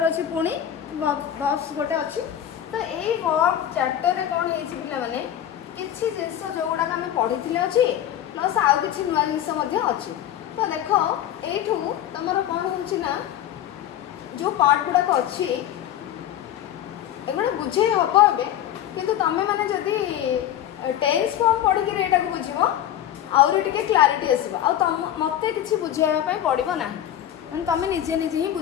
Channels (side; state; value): right; quieter; 11.1 dB